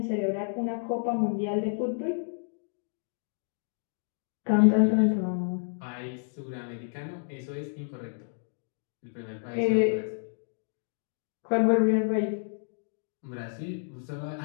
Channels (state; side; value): silent; right; digital silence